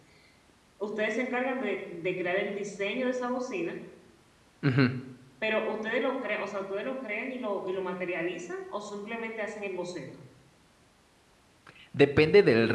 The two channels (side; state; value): both; identical; correlation 1.00